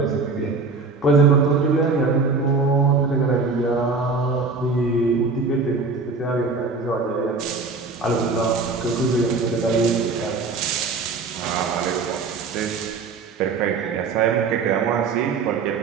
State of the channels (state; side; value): quieter; left; 4.3 dB